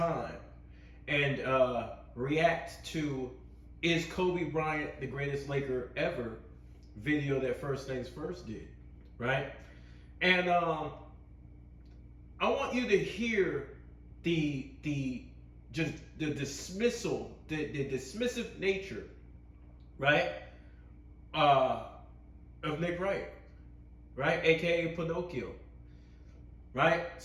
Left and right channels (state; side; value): identical; both; correlation 1.00